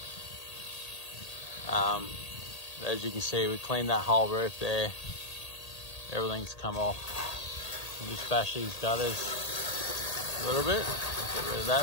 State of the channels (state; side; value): late; right; 1.8 ms